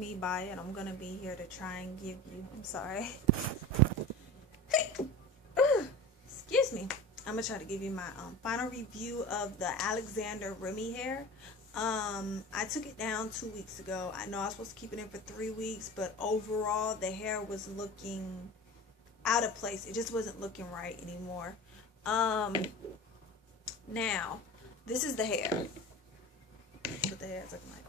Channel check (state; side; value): normal; both; correlation 0.34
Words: Baya, and I'm gonna be here to try and give you. I'm sorry. Excuse me. I'm gonna try to give you my final review of the Alexander Remy hair. I took it down 2 weeks ago. I know I was supposed to keep it in for 3 weeks, but overall the hair was looking out of place. It just wasn't looking right anymore. Um, Now this is the hair. That's what the hair is looking like